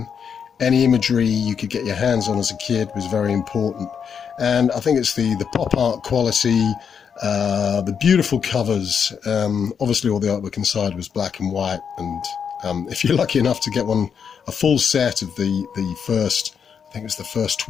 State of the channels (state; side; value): quieter; right; 7.0 dB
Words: Any imagery you could get your hands on as a kid was very important. And I think it's the pop art quality, the beautiful covers. Obviously, all the artwork inside was black and white. And if you're lucky enough to get a full set of the first, I think it was the first